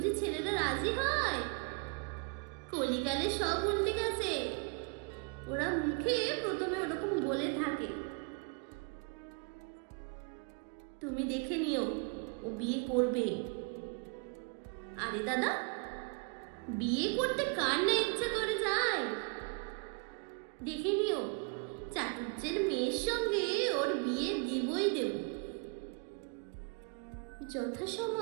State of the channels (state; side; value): quieter; left; 34.8 dB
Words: ছেলেটা রাজি হয়? কলিকালে সব উল্টে গেছে, ওরা মুখে প্রথমে ওরকম বলে থাকে। তুমি দেখে নিও, ও বিয়ে করবে। আরে দাদা, বিয়ে করতে কার না ইচ্ছা করে যায়? দেখে নিও, চাটুর্যের মেয়ের সঙ্গে ওর বিয়ে দিবই দেব।